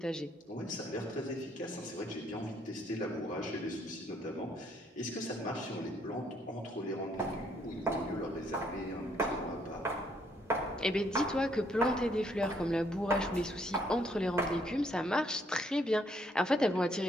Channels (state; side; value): normal; both; correlation 0.69